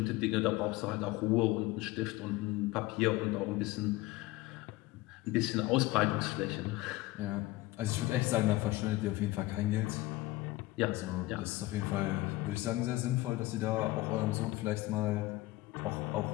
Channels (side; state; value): right; quieter; 18.7 dB